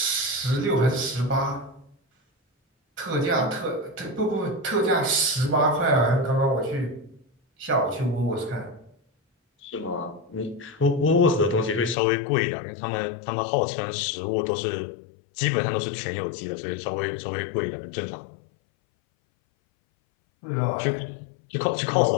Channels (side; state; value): right; drops out; at 12.0 s